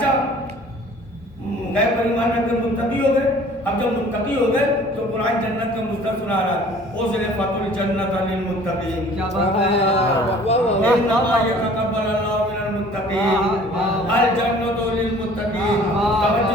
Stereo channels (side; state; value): both; normal; correlation 0.51